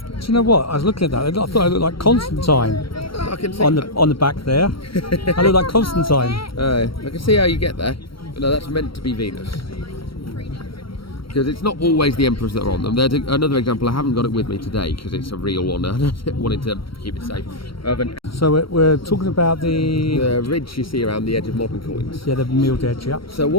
Do you know what? I was looking at that. I thought I looked like Constantine I can see, on the back there. I look like Constantine. I can see how you get there. But no, that's meant to be Venus. Because it's not always the emperors that are on them. There's another example, I haven't got it with me today because it's a real one. I wanted to keep it safe. Of an So we're talking about the ridge you see around the edge of modern coins. the milled edge, yeah. So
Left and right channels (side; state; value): right; late; 0.75 ms